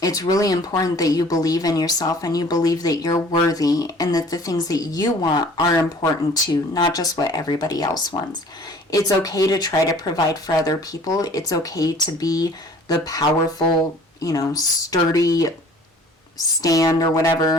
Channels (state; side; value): normal; both; correlation 0.51